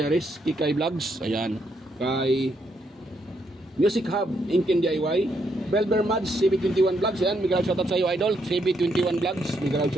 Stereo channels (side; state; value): both; normal; correlation 0.76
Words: Kikay Vlogs, ayan, kay Music Hub, Inkin DIY, Belber Mads, CB21 Vlogs, ayan, mega shoutout sa iyo idol, CB21 Vlogs, mega